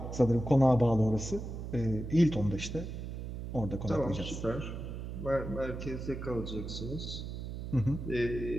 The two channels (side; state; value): right; noise; hum, 7 dB below the sound